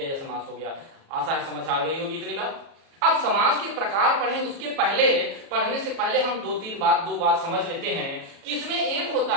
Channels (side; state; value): left; late; 37 ms